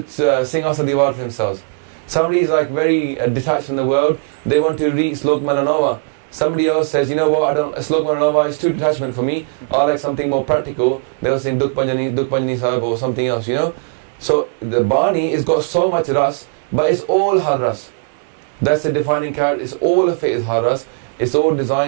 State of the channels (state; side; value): silent; left; digital silence